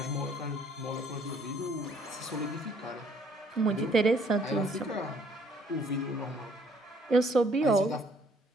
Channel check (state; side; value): normal; both; correlation 0.62